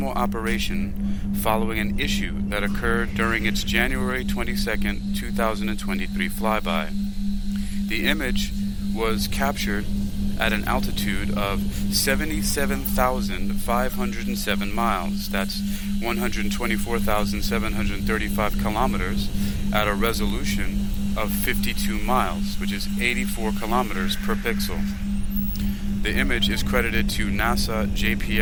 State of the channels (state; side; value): identical; both; correlation 1.00